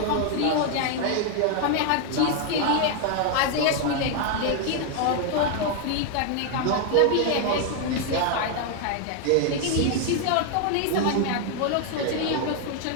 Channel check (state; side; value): different; both; correlation 0.00